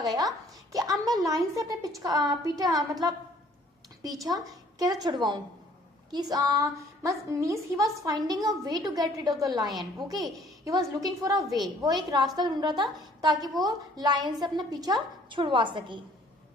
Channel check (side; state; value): both; normal; correlation 0.58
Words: कि अब मैं लायन से अपने पीछा कैसे छुड़वाऊं. means he was finding a way to get rid of the lion. Okay, he was looking for a way. वो एक रास्ता ढूंढ रहा था ताकि वो लायन से अपना पीछा छुड़वा सके.